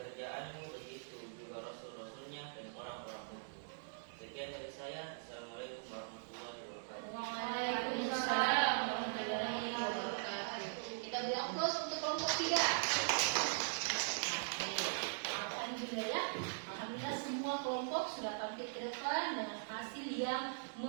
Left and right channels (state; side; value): silent; left; digital silence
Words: begitu juga rasul-rasulnya dan orang-orang mukmin. Sekian dari saya. Assalamualaikum warahmatullahi wabarakatuh. Waalaikumsalam warahmatullahi wabarakatuh. Kita beri aplaus untuk kelompok 3. Alhamdulillah, alhamdulillah semua kelompok sudah tampil ke depan dengan hasil yang